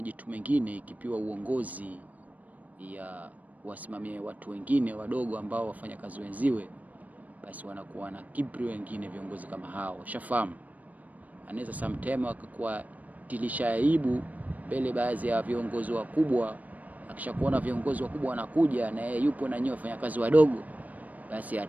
mengine ikipiwa uongozi ya wasimamie watu wengine wadogo ambao wafanya kazi wenziwe, basi wanakuwa na kibri wengine viongozi kama hao. Shafamu anaweza sometime wakakuwa tilisha aibu mbele baadhi ya viongozi wakubwa. Akishakuona viongozi wakubwa wanakuja na yeye yupo na nyinyi wafanyakazi wadogo, basi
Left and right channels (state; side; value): late; left; 0.075 ms